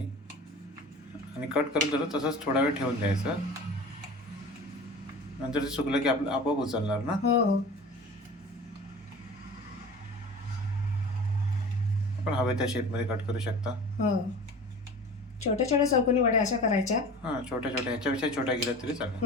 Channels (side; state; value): both; normal; correlation 0.38